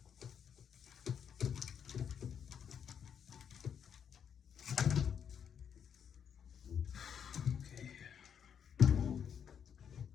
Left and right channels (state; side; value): quieter; right; 7.9 dB